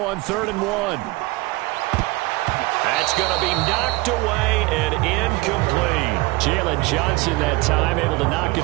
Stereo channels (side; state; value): left; quieter; 22.1 dB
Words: on 3rd and 1. That's going to be knocked away and incomplete. Jalen Johnson that time able to knock